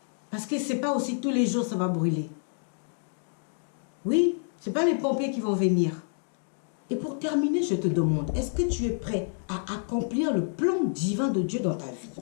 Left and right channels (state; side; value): silent; right; 59 dB below the other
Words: Parce que ce n'est pas aussi tous les jours ça va brûler. Oui, ce n'est pas les pompiers qui vont venir. Et pour terminer, je te demande, est-ce que tu es prêt à accomplir le plan divin de Dieu dans ta vie?